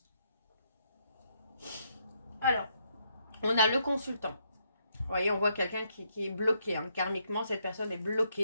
Alors, on a le consultant. Vous voyez, on voit quelqu'un qui est bloqué. Hein. Karmiquement, cette personne est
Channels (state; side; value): inverted; both; correlation -0.75